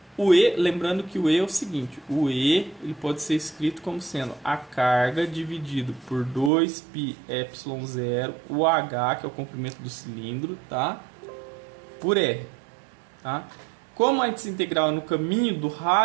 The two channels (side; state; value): left; drops out; at 6.5 s